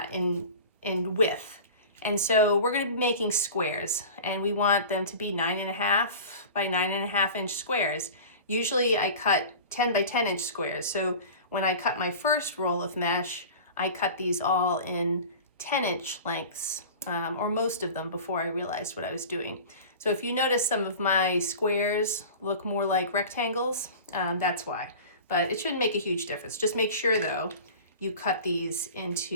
in width. And so we're going to be making squares, and we want them to be 9.5 by 9.5 inch squares. Usually I cut 10 by 10 inch squares. So when I cut my first roll of mesh, I cut these all in 10-inch lengths, or most of them before I realized what I was doing. So if you notice some of my squares look more like rectangles, that's why. But it shouldn't make a huge difference. Just make sure though, you cut these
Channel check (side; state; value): both; inverted; correlation -0.37